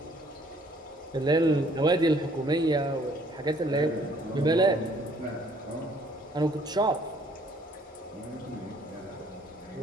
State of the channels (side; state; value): both; normal; correlation 0.61